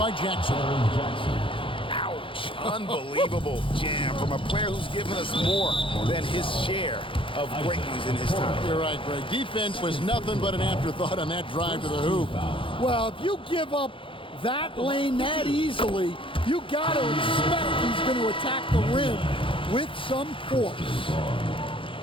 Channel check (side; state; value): right; late; 0.25 ms